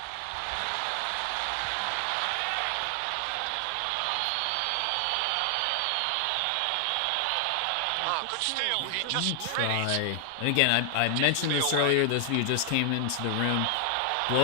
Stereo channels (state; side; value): different; both; correlation 0.00